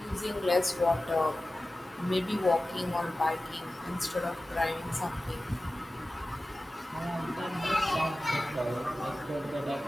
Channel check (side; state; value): both; normal; correlation 0.95